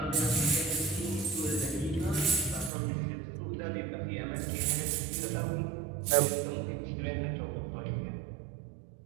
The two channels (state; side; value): drops out; left; at 2.7 s